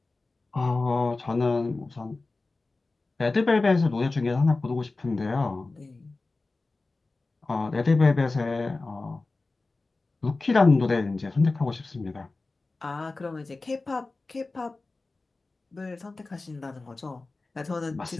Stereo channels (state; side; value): quieter; right; 3.5 dB